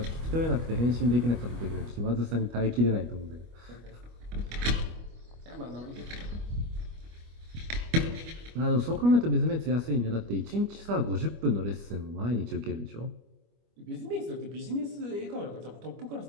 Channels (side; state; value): left; late; 25 ms